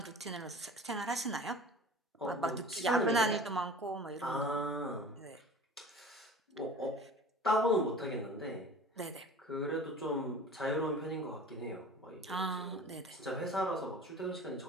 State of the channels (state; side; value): normal; both; correlation 0.41